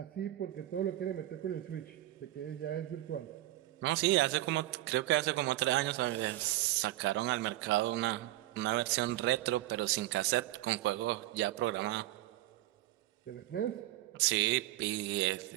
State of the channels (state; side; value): quieter; left; 15.7 dB